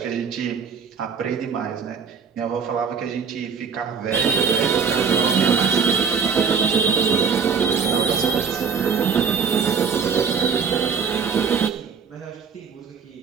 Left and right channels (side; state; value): left; quieter; 6.2 dB